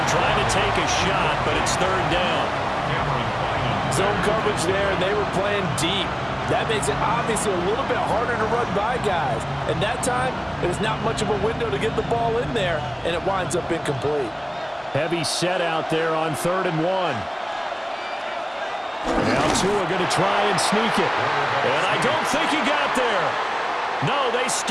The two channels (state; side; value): identical; both; correlation 1.00